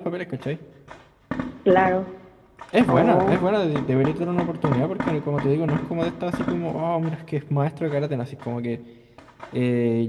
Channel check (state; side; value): identical; both; correlation 1.00